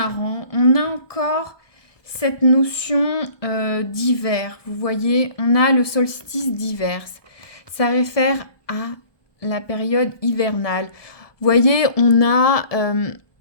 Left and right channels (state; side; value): late; right; 1.2 ms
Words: On a encore cette notion d'hiver. Vous voyez, on a le solstice d'hiver. Ça réfère à la période hivernale. Vous voyez, on a